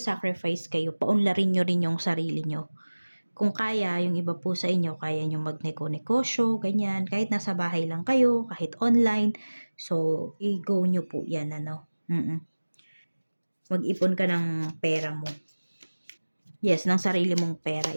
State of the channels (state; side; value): inverted; both; correlation -1.00